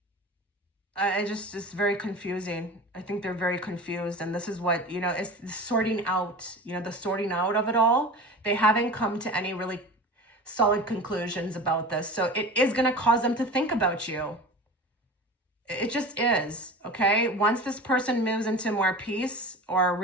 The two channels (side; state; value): both; normal; correlation 0.34